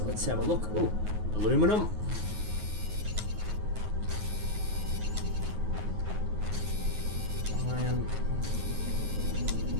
let's have a look. Oh, aluminum. Iron.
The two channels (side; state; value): left; late; 9.4 ms